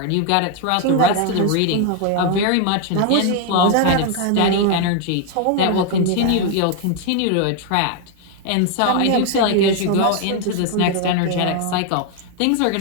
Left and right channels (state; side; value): different; both; correlation 0.01